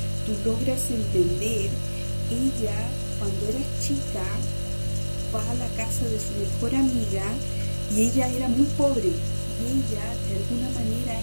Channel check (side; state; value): both; inverted; correlation -1.00